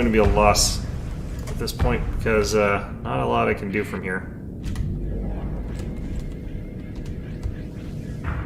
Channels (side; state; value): both; identical; correlation 1.00